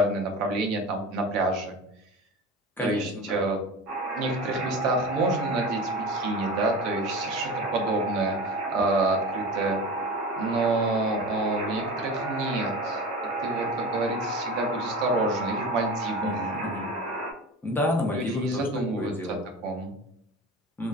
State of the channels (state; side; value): normal; both; correlation 0.31